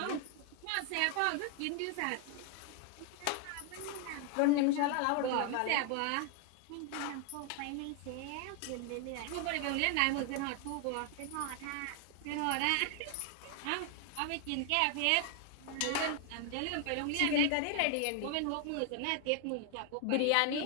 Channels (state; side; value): different; both; correlation 0.00